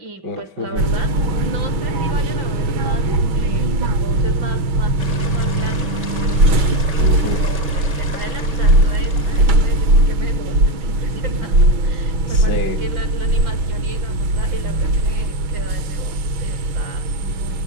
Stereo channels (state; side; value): late; left; 6.1 ms